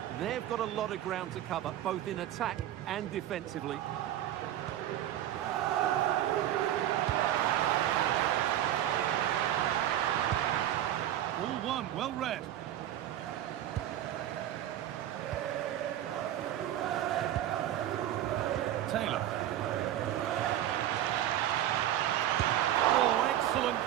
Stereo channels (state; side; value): quieter; left; 12.2 dB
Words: They've got a lot of ground to cover, both in attack and defensively. All one, well read. Taylor. Oh, excellent